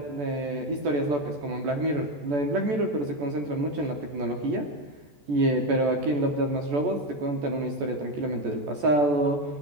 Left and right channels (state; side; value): late; left; 14 ms